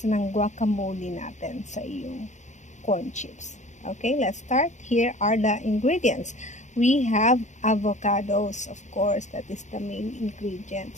ng guacamole natin sa iyong corn chips. Okay, let's start. Here are the ingredients. We have avocados, of course, that is the main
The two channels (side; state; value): right; late; 0.35 ms